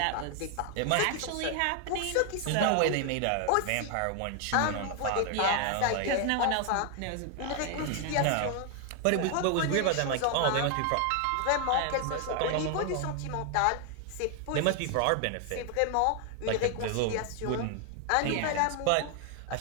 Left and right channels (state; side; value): different; both; correlation 0.00